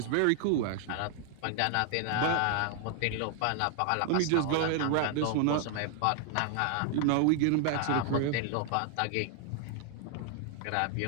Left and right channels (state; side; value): different; both; correlation 0.00